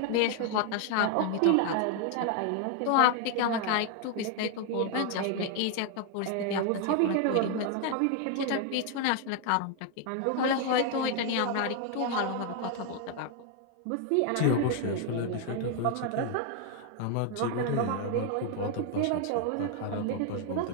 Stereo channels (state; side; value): different; both; correlation 0.00